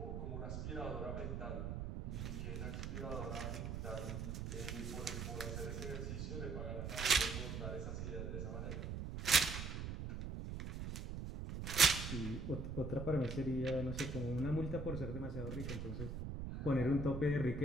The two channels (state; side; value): noise; right; rumble, 4 dB below the sound